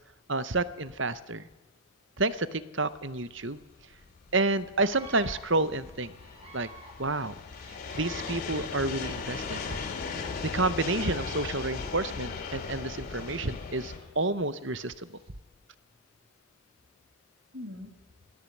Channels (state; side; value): normal; both; correlation -0.09